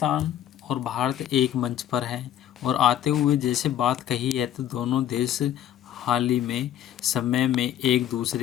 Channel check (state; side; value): quieter; right; 11.2 dB